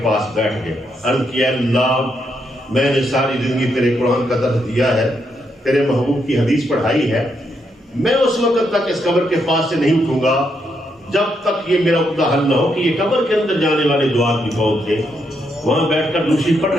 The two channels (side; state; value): both; normal; correlation 0.78